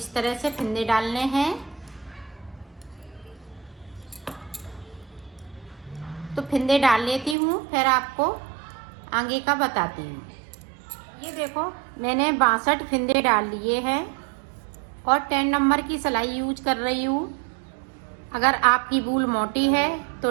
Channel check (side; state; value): left; drops out; at 7.4 s